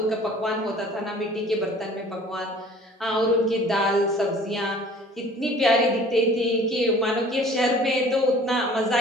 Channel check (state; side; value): normal; both; correlation 0.50